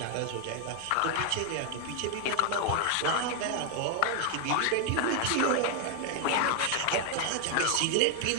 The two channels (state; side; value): different; both; correlation 0.00